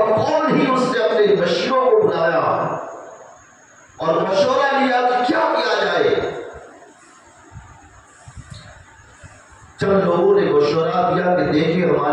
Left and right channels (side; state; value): both; identical; correlation 1.00